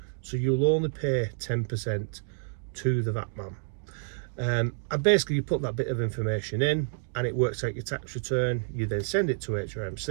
So you'll only pay 10% to the VAT man. And basically you put that bit of information in and it works out your tax return. You then send it to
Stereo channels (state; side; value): silent; left; digital silence